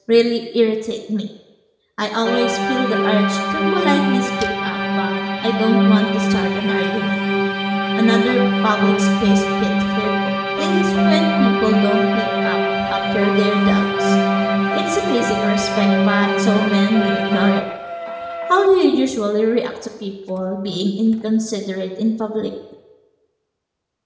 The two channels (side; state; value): both; identical; correlation 1.00